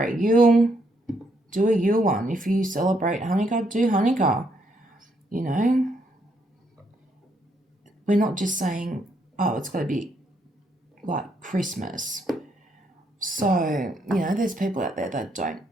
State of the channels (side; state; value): both; normal; correlation 0.74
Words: Yule, do a Yule one. If you celebrate Hanukkah, do Hanukkah. You know, we're not just saying, oh, it's got to be like Christmas. So, you know, there's people out there that don't